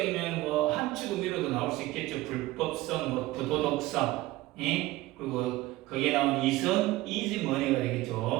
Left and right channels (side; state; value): left; quieter; 18.2 dB